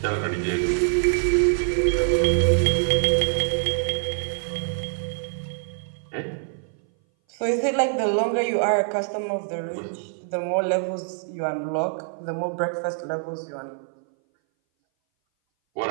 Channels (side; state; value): left; silent; 59 dB below the other